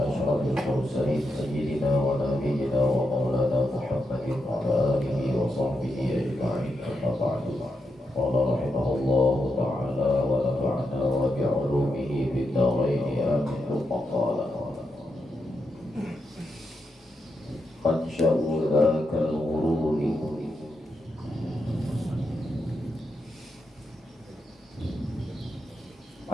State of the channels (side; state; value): both; normal; correlation 0.84